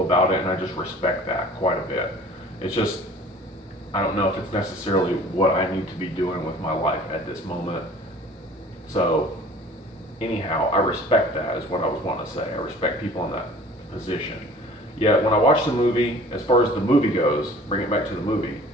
about it, and I just respect that quite a bit. It's just, I don't know if it's necessarily what I need to be doing with my life at this moment. So anyhow, I respect that is what I was wanting to say. I respect people in that position. Yet when I watch the movie, as far as the movie goes, bring it back to the movie,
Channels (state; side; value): normal; both; correlation 0.48